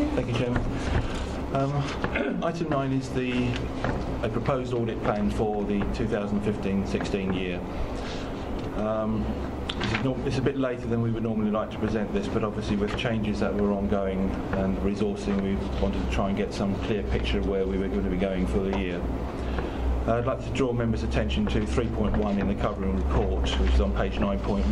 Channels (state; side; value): identical; both; correlation 1.00